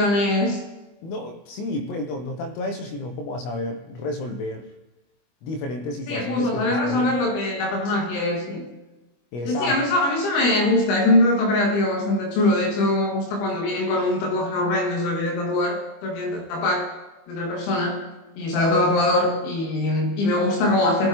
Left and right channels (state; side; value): late; right; 25 ms